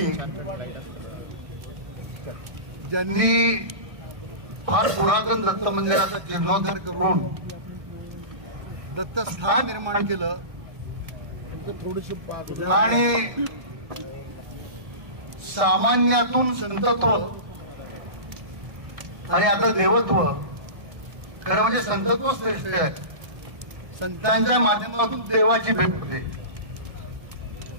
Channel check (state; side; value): late; left; 1.6 ms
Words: ज्यांनी फार पुरातन दत्त मंदिराचा जीर्णोद्धार करून दत्तस्थान निर्माण केलं आणि सामान्यातून संतत्व आणि आता देवत्व खरं म्हणजे संतत्व श्रेष्ठ आहे. संतांच्या माध्यमातून देवाची भेट होते.